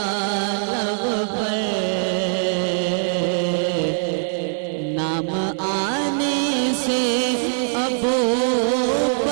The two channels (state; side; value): silent; left; digital silence